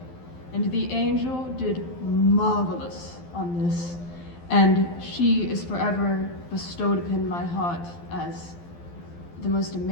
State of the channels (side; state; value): right; late; 12 ms